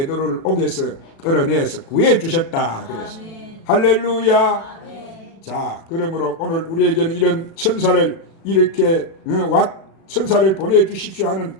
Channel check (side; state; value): right; late; 36 ms